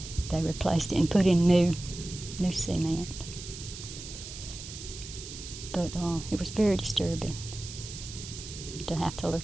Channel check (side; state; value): right; noise; hiss, 11 dB below the sound